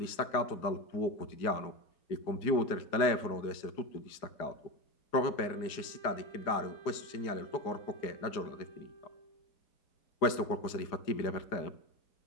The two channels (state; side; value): late; right; 4.9 ms